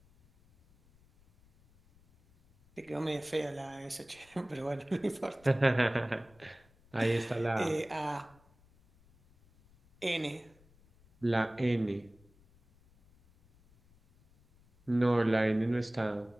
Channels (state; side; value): noise; left; rumble, 29 dB below the sound